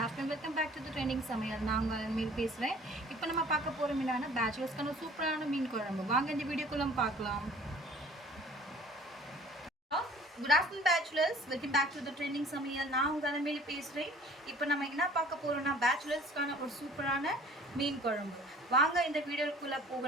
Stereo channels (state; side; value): normal; both; correlation 0.50